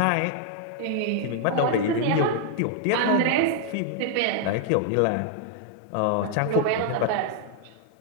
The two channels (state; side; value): different; both; correlation 0.00